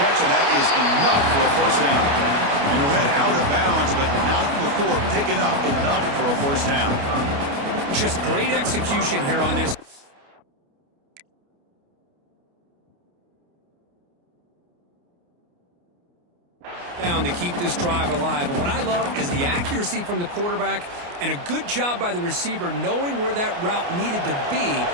catch, and that is enough for a first down. And he'll head out of bounds, but not before picking up enough for a first down. Just great execution here on this. Down to keep this drive alive. And what I love is the accuracy from the quarterback and a good job by the receiver knowing where that route needed to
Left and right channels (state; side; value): late; left; 29 ms